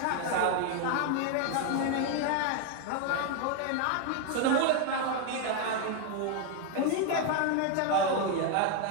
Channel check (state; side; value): different; both; correlation 0.01